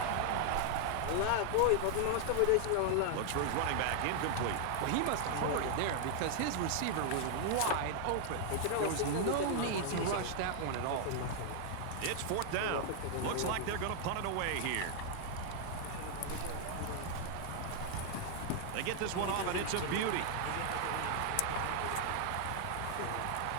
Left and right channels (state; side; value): different; both; correlation 0.00